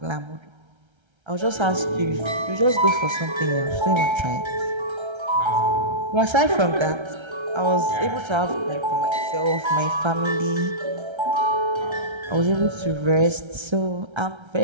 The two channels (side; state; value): left; late; 1.3 ms